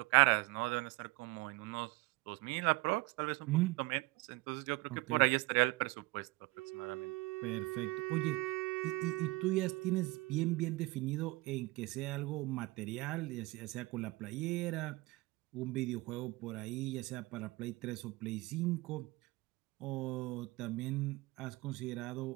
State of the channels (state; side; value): quieter; left; 22.2 dB